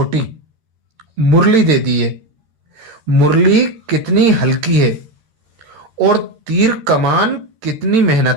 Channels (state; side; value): late; left; 13 ms